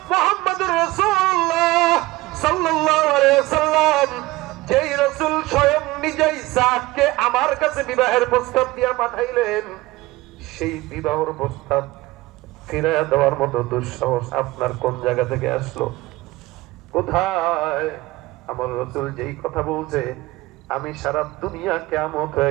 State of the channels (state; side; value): quieter; left; 19.5 dB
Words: মুহাম্মদুর রাসূলুল্লাহ সাল্লাল্লাহু আলাইহি ওয়াসাল্লাম, যেই রাসূল স্বয়ং নিজেই সাদকে আমার কাছে বিবাহের প্রস্তাব দিয়া পাঠাইলেন, সেই বিবাহের প্রস্তাব ফিরিয়ে দেওয়ার মতো দুঃসাহস আপনার কোন জায়গা থেকে আসলো? কোথায়? আমার রাসূল যেই কথা বলছে, আমি সারা দুনিয়া কিয়ামত